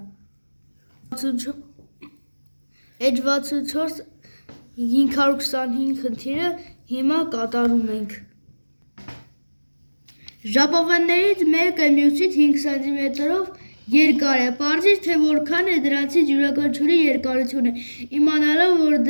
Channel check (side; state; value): both; inverted; correlation -1.00